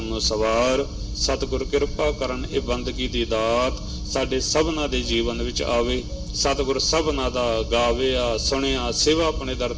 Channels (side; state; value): both; identical; correlation 1.00